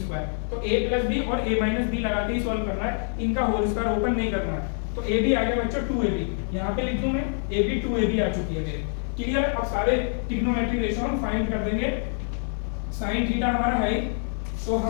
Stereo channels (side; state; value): right; silent; 61 dB below the other